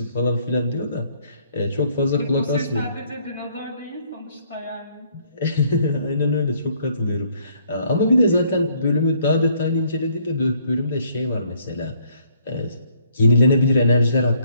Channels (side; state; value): both; inverted; correlation -0.65